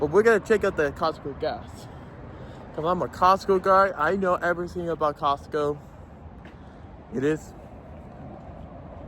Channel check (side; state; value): both; identical; correlation 1.00